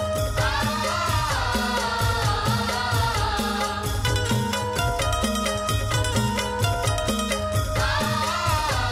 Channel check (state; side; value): identical; both; correlation 1.00